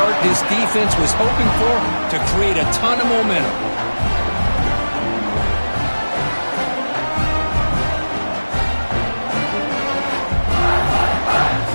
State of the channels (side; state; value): both; inverted; correlation -1.00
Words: this defense was hoping for to create a ton of momentum.